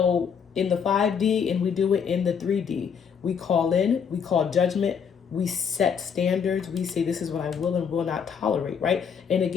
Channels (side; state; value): right; quieter; 7.0 dB